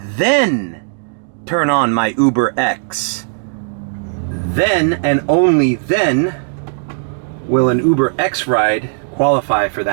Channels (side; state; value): left; silent; digital silence